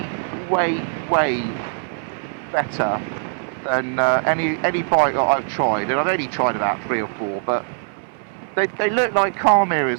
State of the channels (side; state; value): left; silent; 59 dB below the other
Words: better than any bike that I've tried, and I've only tried about 3 or 4, but they look like car